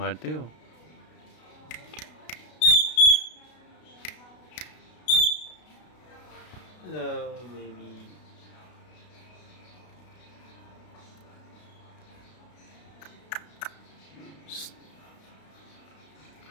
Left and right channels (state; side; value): late; right; 33 ms